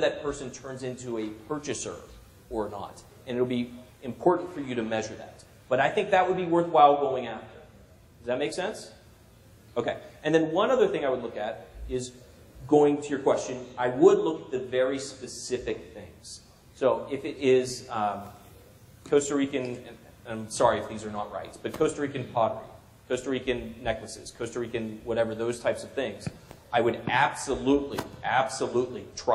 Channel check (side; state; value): both; identical; correlation 1.00